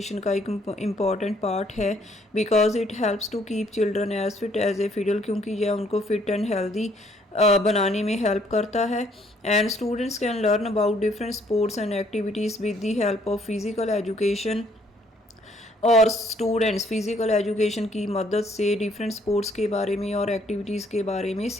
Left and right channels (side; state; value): both; normal; correlation 0.65